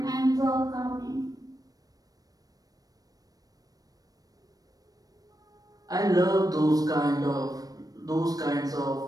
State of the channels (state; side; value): late; left; 0.18 ms